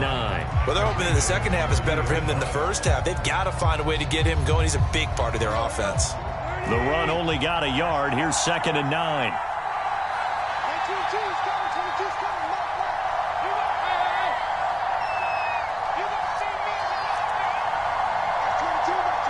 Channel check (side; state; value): both; identical; correlation 1.00